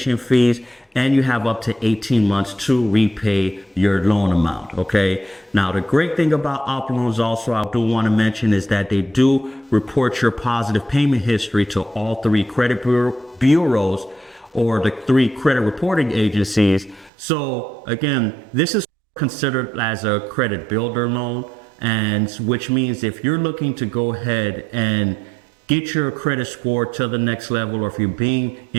fees, and you have up to 18 months to repay your loan amount, okay? Now, the great thing about OppLoans also, I do want to mention, is that they do report your positive payment history to all three credit bureaus or the three credit reporting agencies. So again, this is considered as a credit builder loan, and which means if you're looking to go ahead and get your credit score to the next level, or if you're being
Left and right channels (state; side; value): drops out; left; at 17.1 s